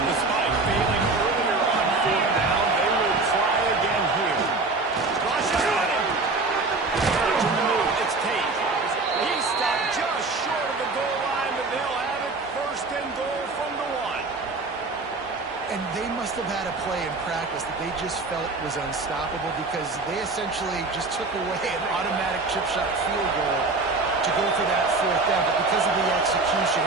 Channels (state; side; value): quieter; left; 3.6 dB